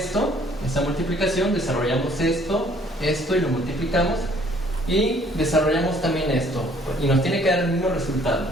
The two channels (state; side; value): normal; both; correlation 0.60